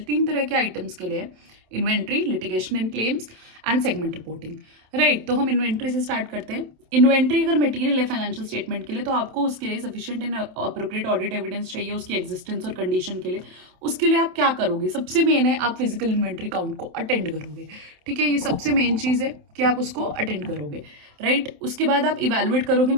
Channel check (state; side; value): late; left; 27 ms